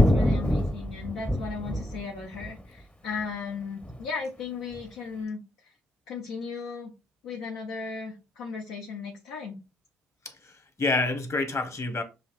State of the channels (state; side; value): normal; both; correlation 0.75